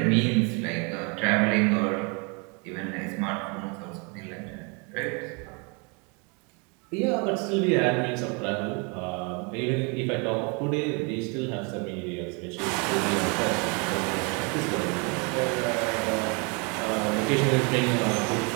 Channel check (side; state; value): left; quieter; 33.0 dB